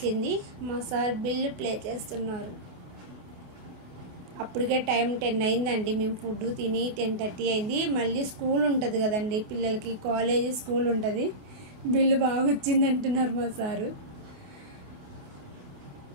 మా సార్ బిల్లు ప్లే చేస్తున్నారు. అప్పటికే టైం 10 అయిందండి. మేము ఫుడ్ తిని 10:30 అయింది. మళ్ళీ స్కూల్ ఉంటుంది కదండి పిల్లలకి, కాలేజీ స్కూల్ ఉంటుంది. బిల్లు బాగా వచ్చింది అంటున్నారు మా సారు.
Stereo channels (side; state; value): left; late; 28 ms